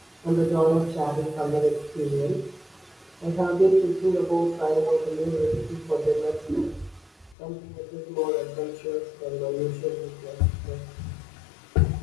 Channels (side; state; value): right; drops out; at 7.4 s